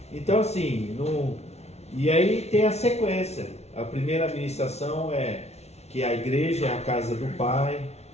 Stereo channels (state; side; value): late; right; 0.31 ms